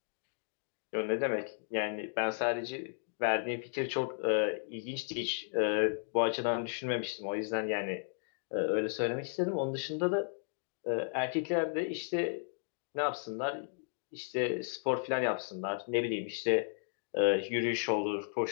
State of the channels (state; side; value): silent; right; digital silence